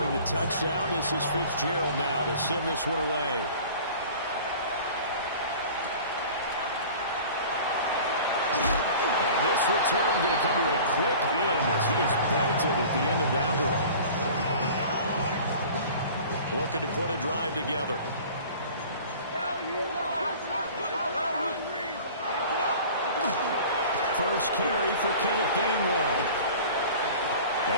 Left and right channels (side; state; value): both; inverted; correlation -0.43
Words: the touchdown, this is Fitzgerald now to send this one away. And this return going to come to a quick end as he is belted at the end of that one. Looking to put a drive together. First carry for Kenneth Gainwell.